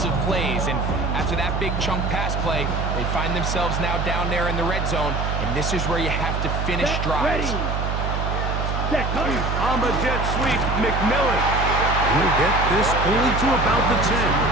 plays. And after that big chunk pass play, they find themselves now down there in the red zone. And this is where you have to finish drives. On the jet sweep, McMillan. He'll get this only to about the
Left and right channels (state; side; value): noise; right; hum, 1 dB below the sound